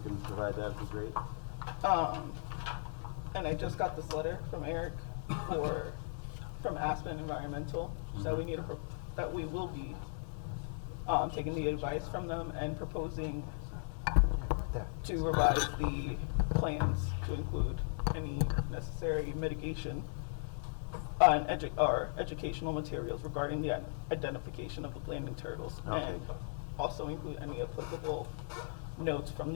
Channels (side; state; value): right; silent; 53 dB below the other